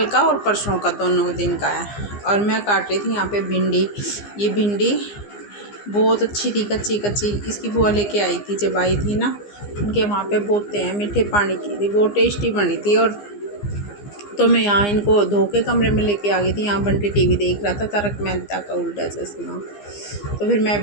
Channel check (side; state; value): right; late; 15 ms